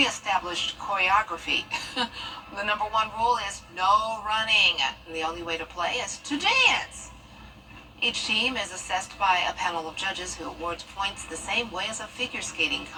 choreography. The number 1 rule is no running. The only way to play is to dance. Each team is assessed by a panel of judges who awards points the same way as a figure skating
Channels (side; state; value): both; identical; correlation 1.00